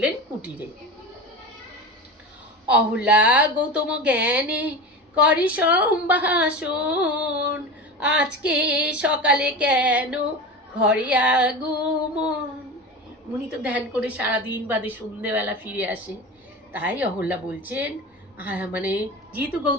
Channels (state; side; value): normal; both; correlation 0.28